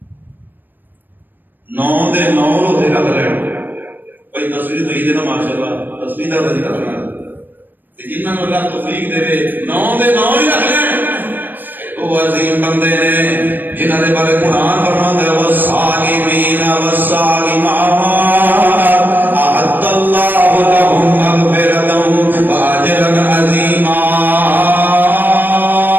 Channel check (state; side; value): late; left; 0.091 ms